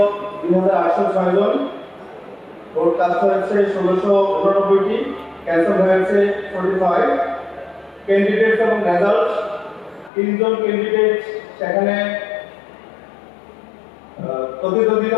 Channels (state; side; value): drops out; right; at 10.1 s